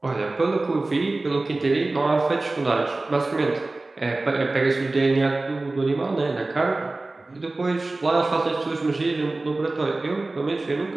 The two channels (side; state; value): left; quieter; 3.1 dB